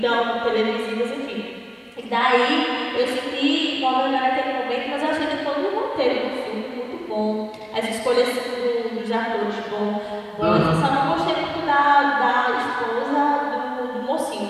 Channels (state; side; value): identical; both; correlation 1.00